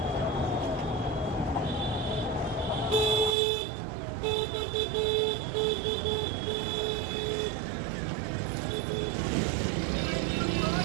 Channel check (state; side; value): drops out; left; at 3.4 s